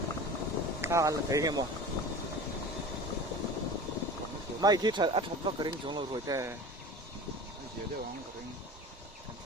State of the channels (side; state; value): both; normal; correlation 0.36